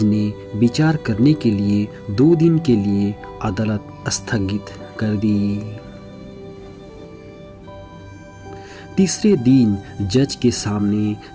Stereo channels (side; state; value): both; identical; correlation 1.00